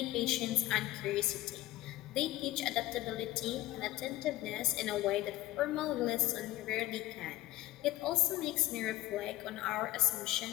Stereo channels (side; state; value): right; quieter; 16.0 dB